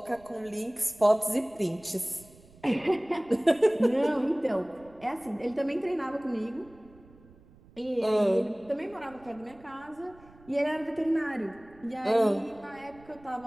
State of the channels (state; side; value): noise; right; rumble, 25 dB below the sound